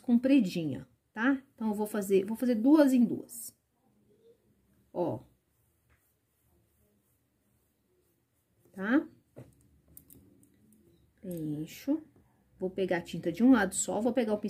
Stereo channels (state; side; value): identical; both; correlation 1.00